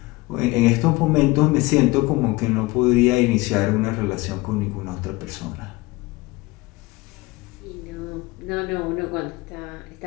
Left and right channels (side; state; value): right; quieter; 21.5 dB